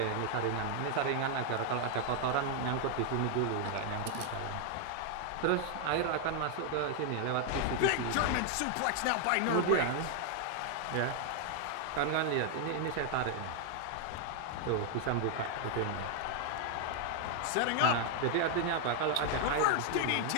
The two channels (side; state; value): both; different; correlation 0.00